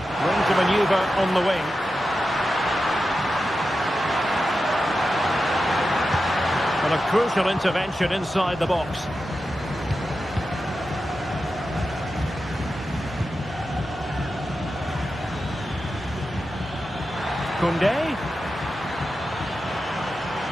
Room to manoeuvre on the wing. A crucial intervention inside the box. Koundé.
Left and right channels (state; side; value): normal; both; correlation 0.91